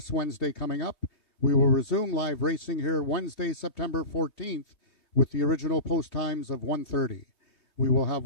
Wednesday coming up. We will resume live racing here Wednesday, September 14th, with the original post times of 1:30. We will have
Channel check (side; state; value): right; late; 3.2 ms